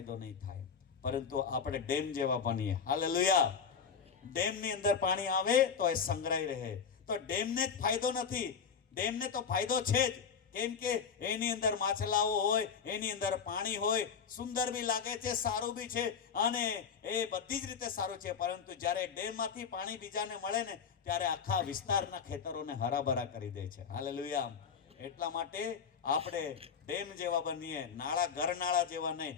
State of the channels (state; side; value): quieter; right; 6.5 dB